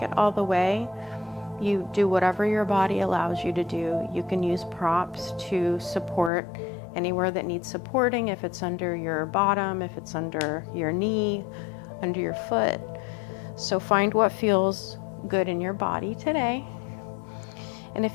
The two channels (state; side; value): drops out; right; at 6.3 s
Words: it all the way, you do whatever your body allows you to do. You can use props to support anywhere that needs supporting, if it's under your bottom, if it's under your knee, under your foot. So find what feels good in your body today. And